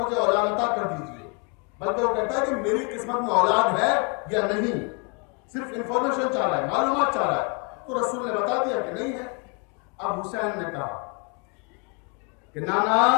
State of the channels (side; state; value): right; quieter; 35.4 dB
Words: اولاد عطا کر دیجیے، بلکہ وہ کہتا ہے کہ میری قسمت میں اولاد ہے یا نہیں، صرف انفارمیشن چاہ رہا ہے، معلومات چاہ رہا ہے۔ تو رسول نے بتا دیا کہ نہیں ہے۔ اب حسین نے کہا کہ نانا